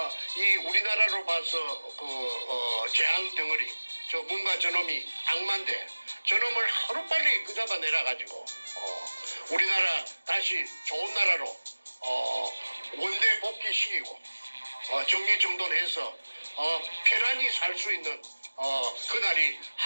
이 우리나라로 봐서 재앙 덩어리, 저 뭔가 저놈이 악마인데 저놈을 하루빨리 끄잡아 내려가지고 우리나라 다시 좋은 나라로 원대 복귀시키고 정리정돈해서 편안히 살 수 있는 그날이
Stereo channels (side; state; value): both; inverted; correlation -1.00